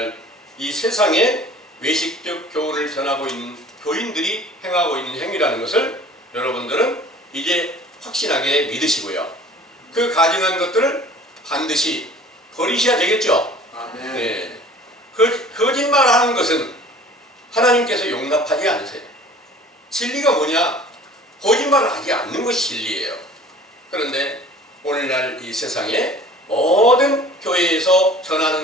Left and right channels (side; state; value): both; normal; correlation 0.47